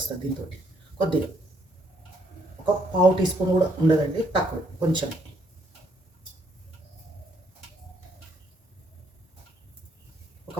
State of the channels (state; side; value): normal; both; correlation 0.70